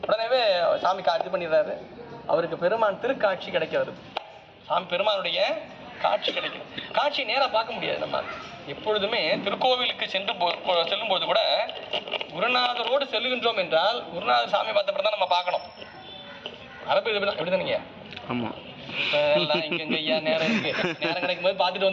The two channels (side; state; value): both; identical; correlation 1.00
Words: உடனேவே சாமி காட்சி பண்ணிடுறாரு. அவருக்கு பெருமான் திருக்காட்சி கிடைக்கிறது. சாமி பெருமானுடைய காட்சி கிடைக்கும். காட்சி நேராக பார்க்க முடியாது. நம்ம எப்பொழுதுமே திருக்கோவிலுக்கு செல்லும்போது கூட குருநாதரோடு செல்லுகின்றோம் என்றால் குருநாதர் சாமி பார்த்தப்பறம் தான் நம்ம பார்க்கணும். அரபு எப்படிதானீங்க? ஆமாம். எல்லாம் இங்க ஐயா நேரம் இருக்கு, நேரம் கிடைக்கும் போது பார்த்துட்டு